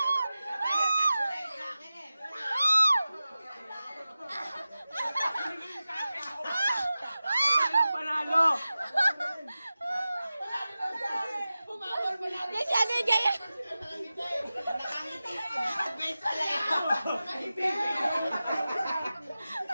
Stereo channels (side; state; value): both; inverted; correlation -0.95